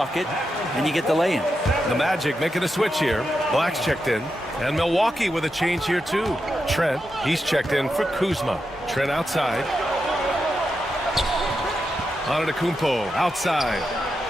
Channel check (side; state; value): both; normal; correlation 0.87